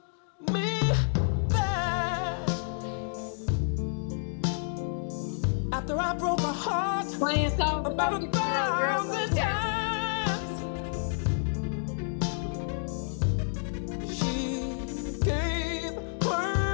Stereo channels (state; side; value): silent; right; digital silence